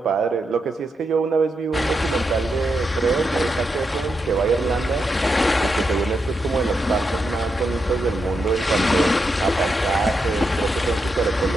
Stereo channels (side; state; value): both; normal; correlation 0.84